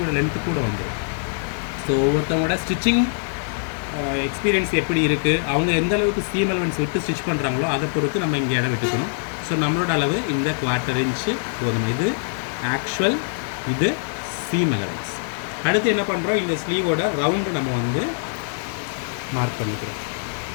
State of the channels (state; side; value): silent; right; digital silence